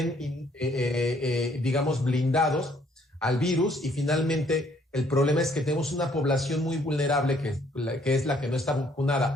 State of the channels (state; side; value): normal; both; correlation 0.64